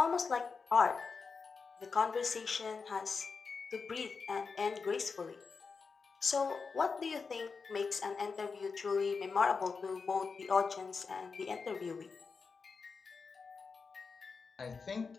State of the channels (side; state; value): right; quieter; 5.0 dB